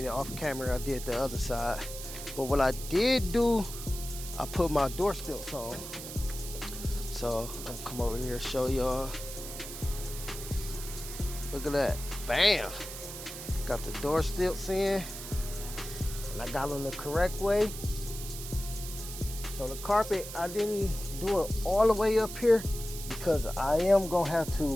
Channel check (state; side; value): noise; right; hiss, 10 dB below the sound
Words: it off camera. I did the other side, but what I did do, I put my door stilts on. So I'm gonna come over here and show y'all. Look at that, bam! Got the door stilts in, and I got them the correct way. So the carpet, I didn't do it all the way up here because I am gonna have